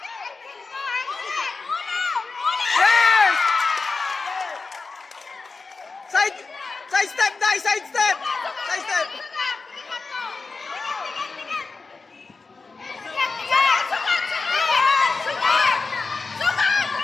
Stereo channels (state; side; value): quieter; right; 4.2 dB